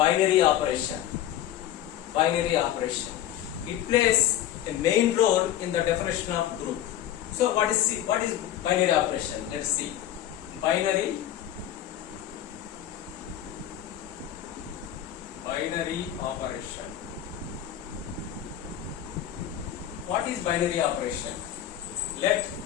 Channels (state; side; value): quieter; right; 11.7 dB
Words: operation. Binary operation. It plays a main role in the definition of group. So, what is binary operation? Let's see. Binary operation. What is binary operation? Let